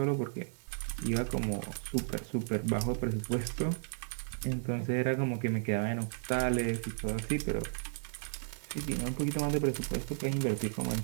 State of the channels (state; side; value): silent; left; 55 dB below the other